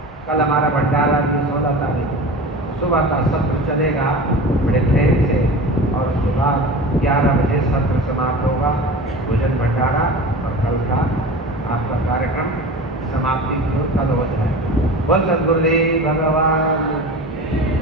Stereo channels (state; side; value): normal; both; correlation 0.34